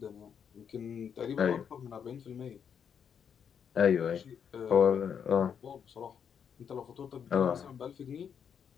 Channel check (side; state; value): right; quieter; 7.6 dB